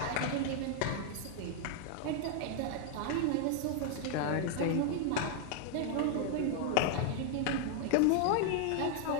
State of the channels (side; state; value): both; different; correlation 0.00